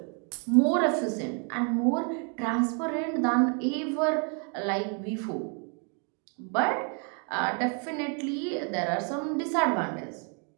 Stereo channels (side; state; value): left; quieter; 39.2 dB